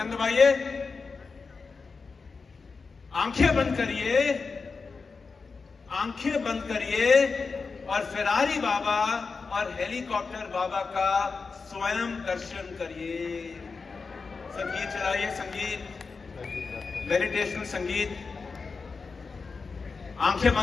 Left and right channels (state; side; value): quieter; right; 4.7 dB